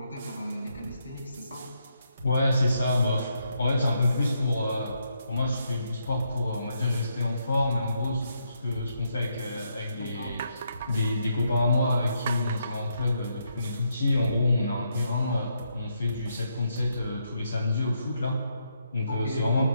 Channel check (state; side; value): inverted; both; correlation -0.78